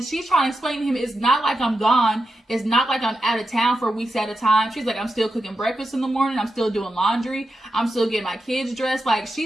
she's trying to explain to him, it's not like I'm gone. It's not like I'm out of town for weeks at a time. She's like, I'm still cooking breakfast in the morning. I'm still doing laundry. I'm still getting my kids dressed. Like,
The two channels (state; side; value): normal; both; correlation 0.89